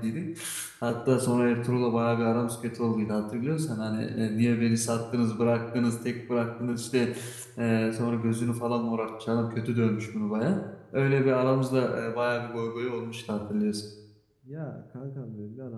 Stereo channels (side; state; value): both; identical; correlation 1.00